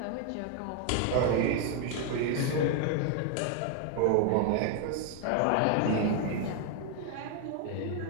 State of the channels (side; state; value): both; different; correlation 0.00